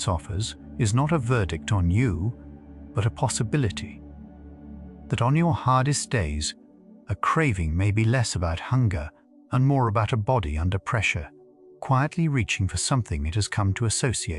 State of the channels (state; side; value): identical; both; correlation 1.00